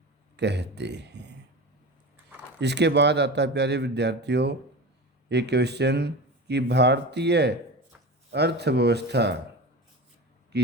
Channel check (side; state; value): both; normal; correlation 0.29